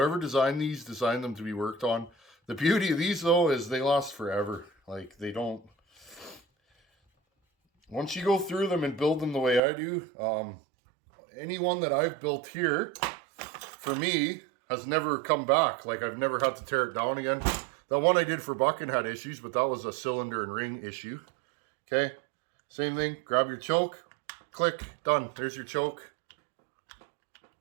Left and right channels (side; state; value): left; drops out; at 9.6 s